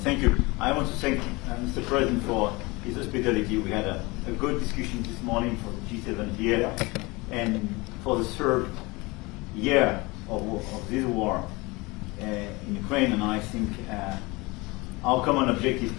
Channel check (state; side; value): quieter; right; 24.2 dB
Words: thank you. I want to thank Mr. President for his hospitality. We had a good discussion this morning for G7 here, and for the third year of this war in Ukraine. And I think our common objective